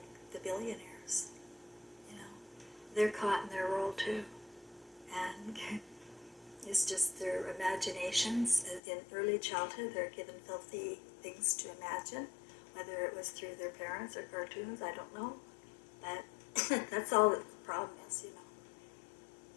the billionaires. You know, they're caught in their role too. And it's just their imaginations. In early childhood, they're given filthy things to imagine, whether it was through their parents or cartoons, I don't know. But that's all that the problem is, you know.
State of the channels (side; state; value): right; drops out; at 8.8 s